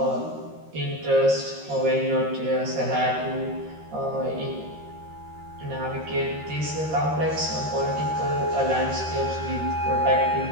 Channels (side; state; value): left; late; 13 ms